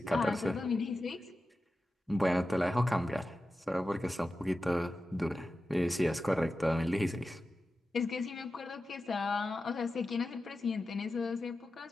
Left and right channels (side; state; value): both; normal; correlation 0.93